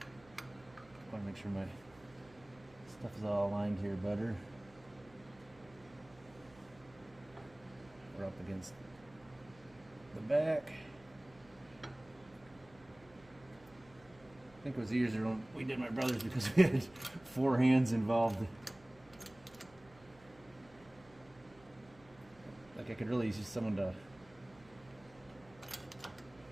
want to make sure my stuff is all aligned here better. We're up against the back. I think it was easier when we did my brother's because we had 4 hands involved. Like I could really use someone to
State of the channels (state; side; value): noise; right; hum, 25 dB below the sound